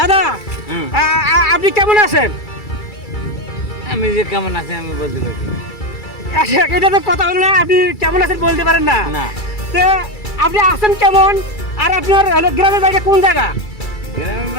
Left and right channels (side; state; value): right; late; 2.3 ms